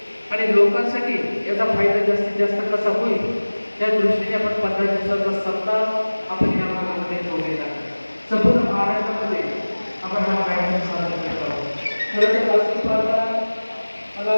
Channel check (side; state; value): both; inverted; correlation -1.00